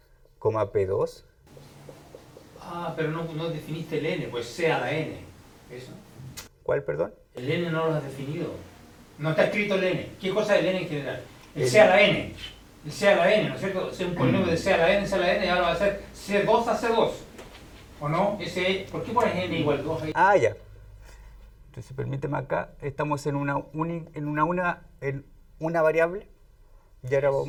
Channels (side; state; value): both; identical; correlation 1.00